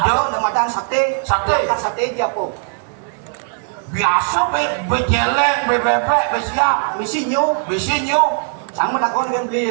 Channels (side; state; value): left; silent; 60 dB below the other